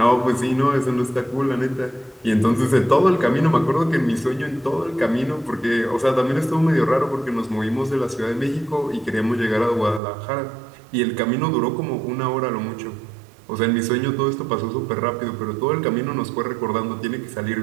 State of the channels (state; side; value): drops out; left; at 10.0 s